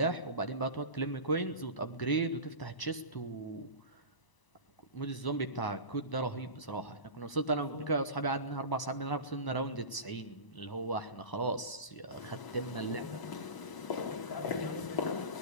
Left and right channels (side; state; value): right; late; 1.0 ms